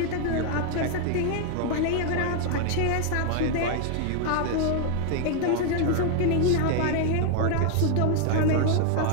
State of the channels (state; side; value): different; both; correlation 0.00